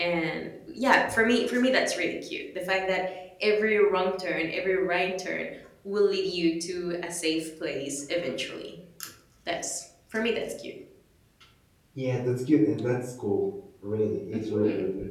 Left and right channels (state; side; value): identical; both; correlation 1.00